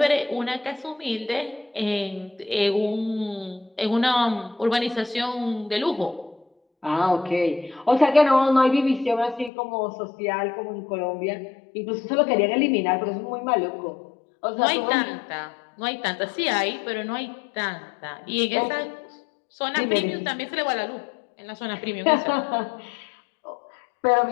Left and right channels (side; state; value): right; drops out; at 9.5 s